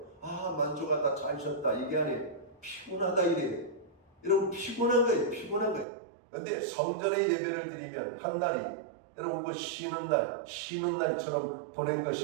만족하다, 잘 쉬었다. 이게 아니에요. 피곤하다 이래요. 여러분, 피곤한 거예요. 피곤한 거예요. 근데 성전의 예배를 드리면 한 날이 여러분 그 쉬는 날처럼 보낸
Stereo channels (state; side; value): drops out; left; at 5.9 s